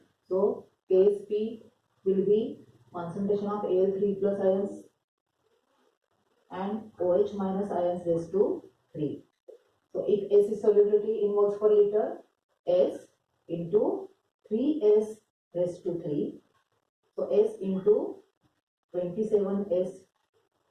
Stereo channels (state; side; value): identical; both; correlation 1.00